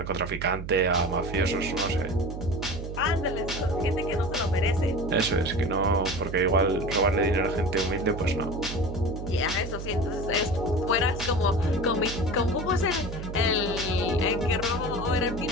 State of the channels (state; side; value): noise; right; hum, 8 dB below the sound